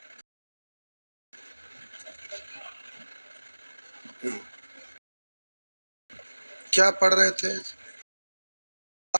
क्या पढ़ रहे थे?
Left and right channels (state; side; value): inverted; both; correlation -1.00